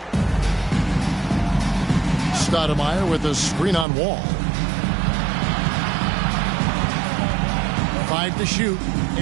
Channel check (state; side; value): drops out; left; at 3.9 s